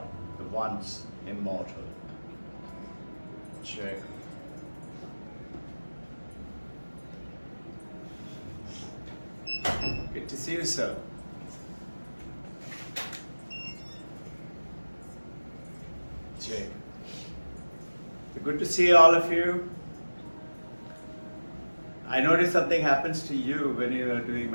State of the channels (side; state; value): both; inverted; correlation -1.00